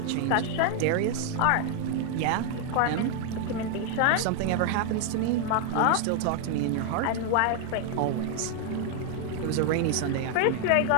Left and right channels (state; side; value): different; both; correlation 0.00